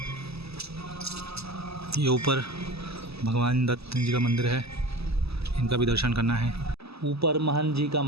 ये ऊपर भगवान दत्त जी का मंदिर है, इनका भी दर्शन करना है। ऊपर महंत जी का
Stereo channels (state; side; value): late; left; 0.78 ms